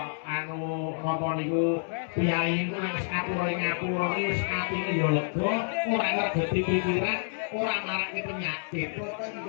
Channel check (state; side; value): silent; right; 59 dB below the other